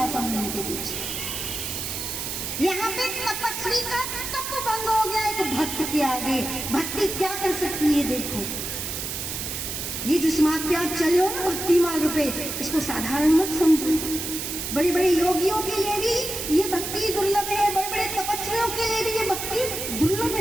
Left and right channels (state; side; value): noise; right; hiss, 5 dB below the sound